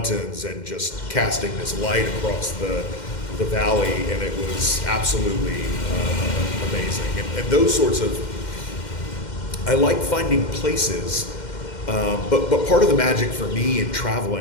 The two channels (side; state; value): right; late; 2.1 ms